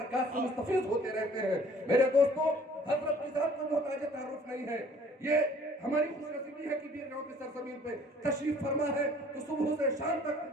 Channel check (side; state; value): both; normal; correlation 0.54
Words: سے مستفیض ہوتے رہتے ہیں. میرے دوستو، حضرت کی ذات کو محتاج تعارف نہیں ہے. یہ ہماری خوش نصیبی ہے کہ بیرگاؤں کی سرزمین پہ تشریف فرما ہے تو صبح سے شام